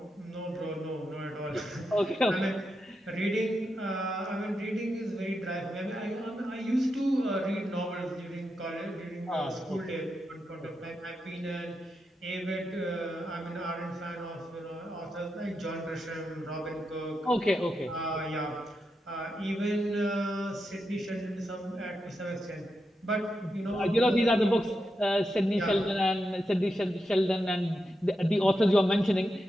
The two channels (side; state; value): both; normal; correlation 0.86